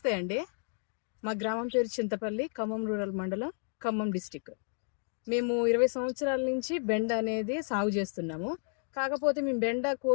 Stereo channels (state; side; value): silent; right; 57 dB below the other